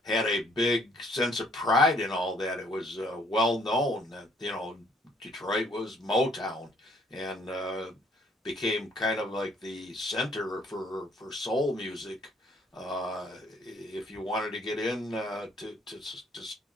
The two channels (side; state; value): both; normal; correlation 0.63